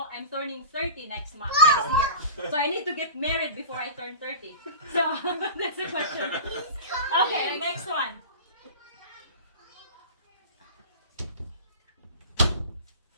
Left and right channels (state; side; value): inverted; both; correlation -0.33